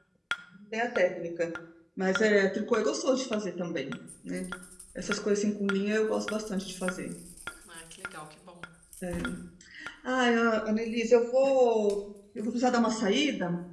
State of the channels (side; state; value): both; identical; correlation 1.00